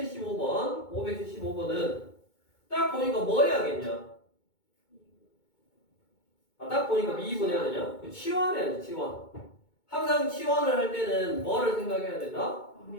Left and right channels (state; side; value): late; right; 2.2 ms